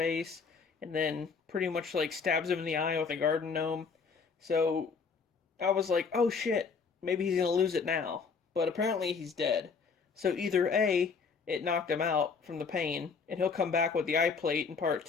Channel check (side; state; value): right; quieter; 5.3 dB